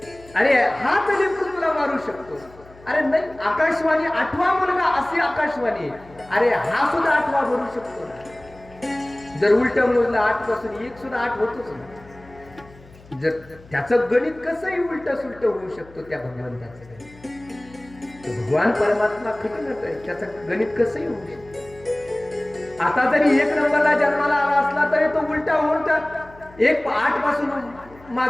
अरे हाच लेकरू तुला मारू शकतो. अरे नाही, आकाशवाणी 8वा मुलगा असे आकाशवाणी, अरे हा सुद्धा 8वा भरू शकतो ना. जर उलट मोजलं 8 पासून 1 सुद्धा 8 होतोच ना. जर त्याचं गणित कसंही उलट सुलट होऊ शकतो त्या भगवंताचं गणित. भगवान परमात्मा खटकत आहे, त्याचं गणित कसंही होऊ शकतं. आता जरी 1 नंबरला जन्माला आला असला तरी तो उलटा होऊन त्यात 1 8 पासून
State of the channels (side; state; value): left; noise; hum, 23 dB below the sound